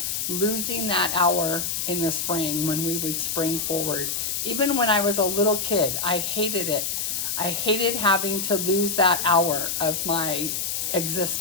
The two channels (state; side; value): noise; left; hiss, 1 dB below the sound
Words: losing that hour in the spring when we would spring forward. Even when I was a little kid, I hated it. I hated having to lose that hour of my